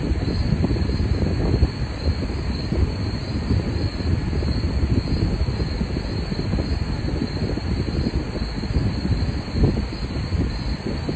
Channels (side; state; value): both; identical; correlation 1.00